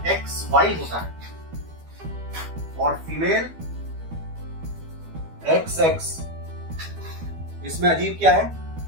XY होता है और फीमेल XX। इसमें अजीब क्या है?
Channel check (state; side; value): late; left; 12 ms